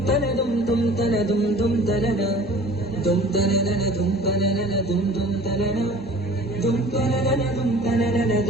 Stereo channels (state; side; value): normal; both; correlation 0.45